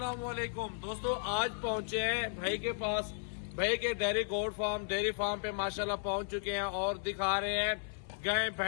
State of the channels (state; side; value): silent; right; 55 dB below the other